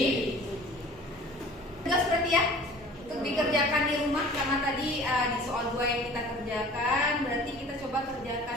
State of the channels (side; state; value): both; normal; correlation 0.46